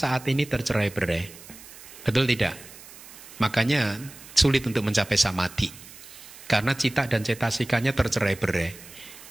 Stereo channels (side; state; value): right; noise; hiss, 18 dB below the sound